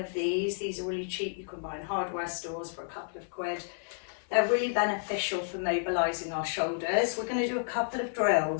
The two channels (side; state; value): right; silent; 57 dB below the other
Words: these are really cheap. You can buy in hardware stores for a couple of quid. They're really beneficial for mobilising our shoulders. We're going to do a couple of